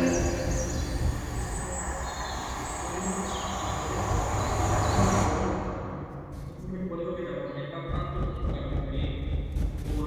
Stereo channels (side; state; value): both; identical; correlation 1.00